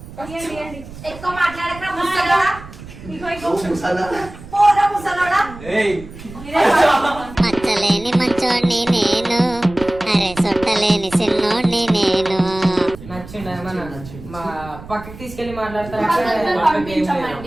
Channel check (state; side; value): noise; right; rumble, 16 dB below the sound